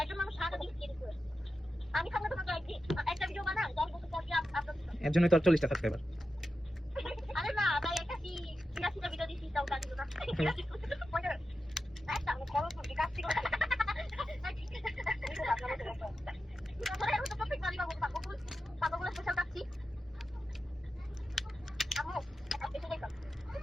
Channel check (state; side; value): normal; both; correlation 0.90